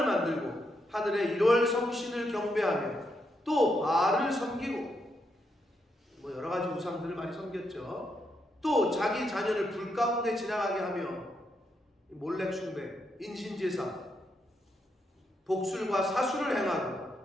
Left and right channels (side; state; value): both; normal; correlation 0.80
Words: 만들고 하늘의 1월 성신을 경배하며 또 바알을 섬기고, 여러 가지 우상들을 많이 섬겼죠. 또 자기 자녀를 불 가운데 지나가게 하며 몰렉 숭배, 인신제사, 복술과 사수를 행하고